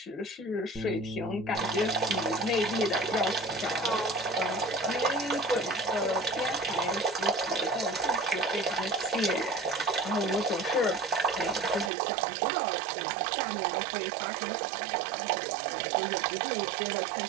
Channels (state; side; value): drops out; left; at 11.9 s